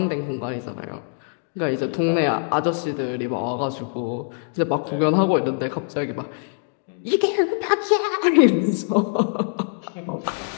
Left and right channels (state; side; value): silent; right; 63 dB below the other